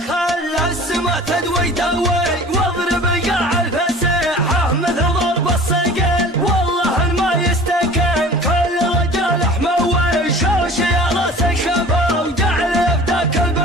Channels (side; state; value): both; normal; correlation 0.43